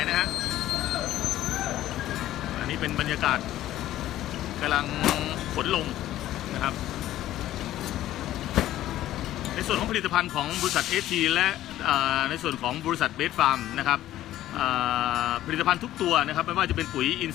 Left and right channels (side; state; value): right; quieter; 13.8 dB